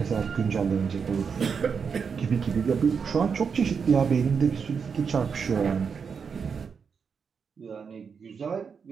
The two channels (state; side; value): quieter; left; 6.1 dB